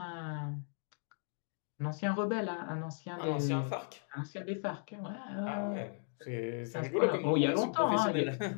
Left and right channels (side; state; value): right; silent; 54 dB below the other